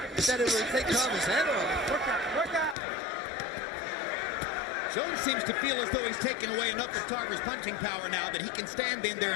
that it will take Tarver's head off. Work out. Jones seems to feel as though he's taken away enough of Tarver's punching power now that he can stand in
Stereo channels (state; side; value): drops out; right; at 2.8 s